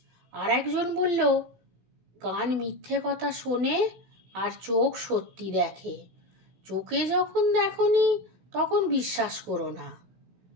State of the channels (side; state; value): left; late; 16 ms